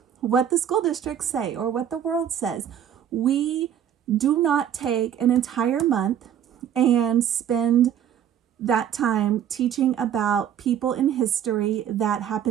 what the school districts say or what the world says. We do not take an entire month and spend that time teaching about people in history that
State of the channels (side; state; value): left; quieter; 9.6 dB